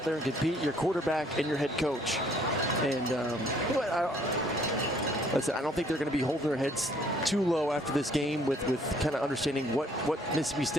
there and compete, your quarterback and your head coach. And listen, I don't think they're going to be holding their heads too low after this game with kind of understanding what Mississippi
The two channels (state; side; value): normal; both; correlation 0.62